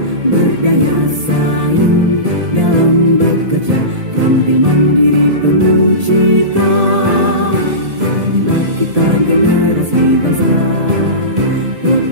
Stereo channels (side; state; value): left; late; 1.8 ms